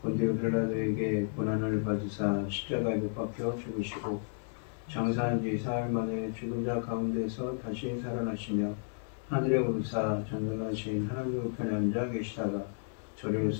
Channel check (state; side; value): silent; right; 56 dB below the other